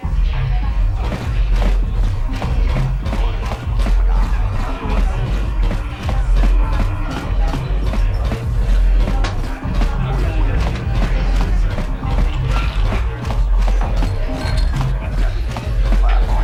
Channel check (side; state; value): both; identical; correlation 1.00